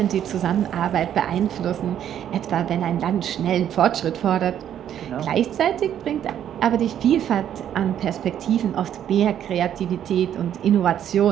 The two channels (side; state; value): left; quieter; 10.1 dB